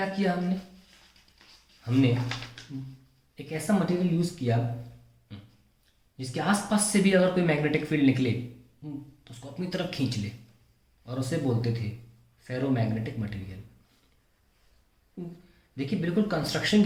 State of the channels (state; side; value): identical; both; correlation 1.00